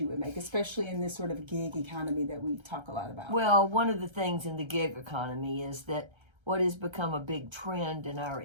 you would make, especially in this sort of gig economy that we talk a lot about? Well, one of the things in the gig economy is that what has become a big trend in our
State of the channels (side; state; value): left; late; 1.3 ms